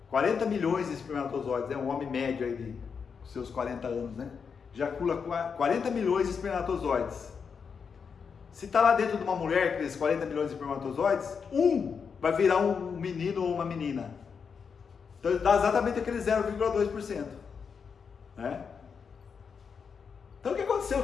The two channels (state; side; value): quieter; right; 6.1 dB